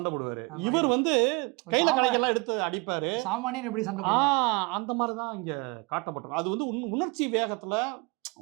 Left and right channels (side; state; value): left; quieter; 28.3 dB